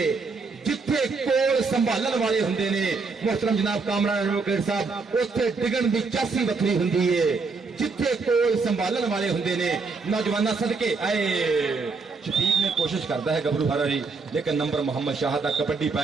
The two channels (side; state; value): left; quieter; 4.4 dB